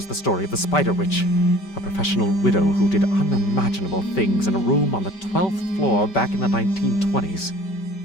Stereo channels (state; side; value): late; right; 5.2 ms